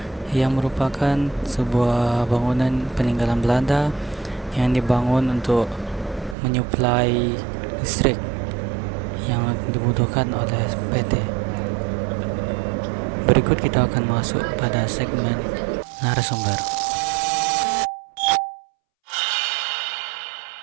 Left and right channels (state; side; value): drops out; left; at 6.4 s